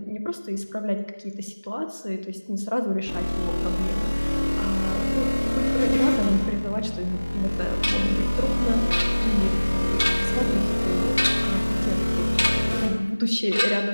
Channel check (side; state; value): both; inverted; correlation -1.00